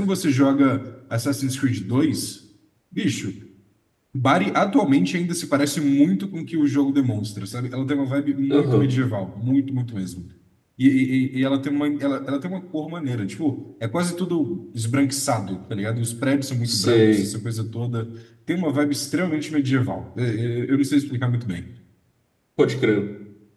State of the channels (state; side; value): identical; both; correlation 1.00